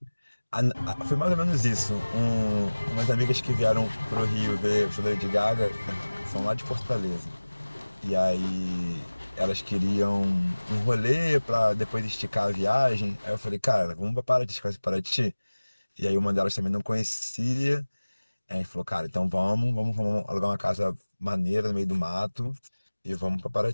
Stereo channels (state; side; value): inverted; both; correlation -1.00